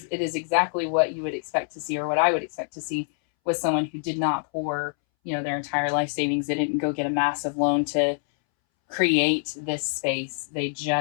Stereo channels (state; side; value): silent; right; 61 dB below the other